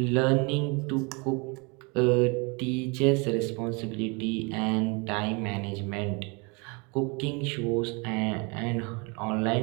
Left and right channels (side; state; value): left; quieter; 30.7 dB